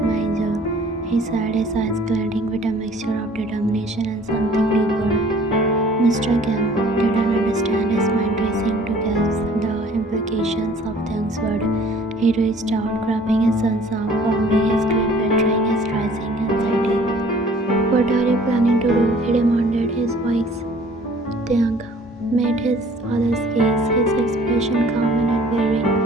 my angel, he said, his eyes glinting with a mixture of determination and something deeper. Mr. Kim didn't understand, his mind racing to guess the implications of Tiang's word. He reached out, grabbing his son's arm firmly, his grip betraying his rising anxiety. What are you planning to do? He demanded, his voice. Tiang met his father's gaze, his expression calm and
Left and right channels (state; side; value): normal; both; correlation 0.53